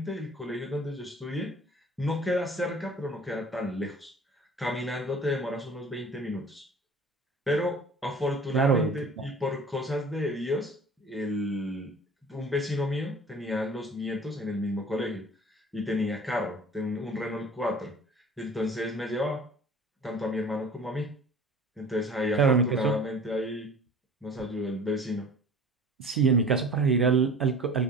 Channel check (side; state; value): both; normal; correlation 0.44